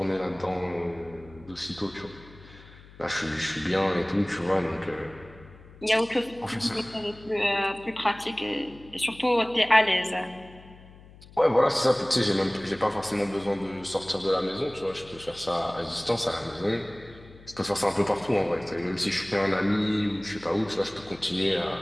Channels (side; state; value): left; noise; hum, 21 dB below the sound